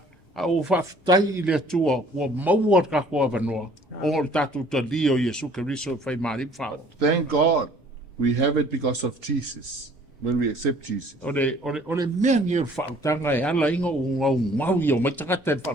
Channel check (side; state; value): both; normal; correlation 0.55